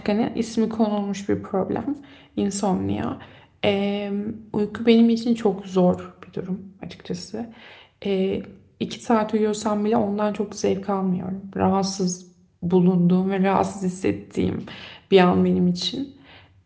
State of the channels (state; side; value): identical; both; correlation 1.00